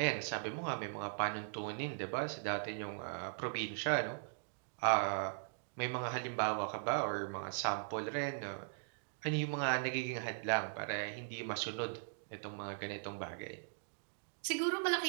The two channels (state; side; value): silent; left; digital silence